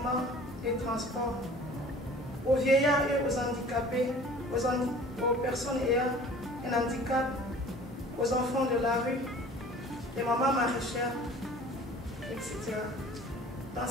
et transports aux vieillards et aux handicapés, aux personnes ayant un handicap, aux enfants de la rue, les mamans maraîchères, etc. Dans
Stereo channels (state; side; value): normal; both; correlation 0.47